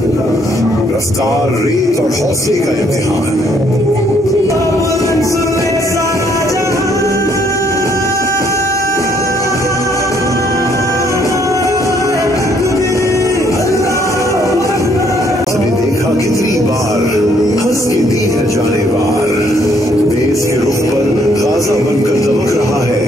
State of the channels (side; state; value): both; normal; correlation 0.68